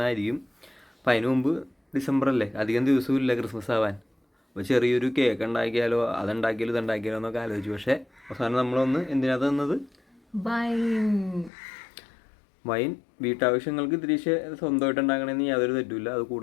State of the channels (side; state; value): right; drops out; at 11.5 s